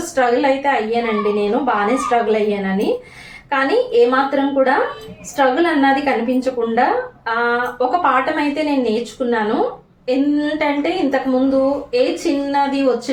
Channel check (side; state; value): both; identical; correlation 1.00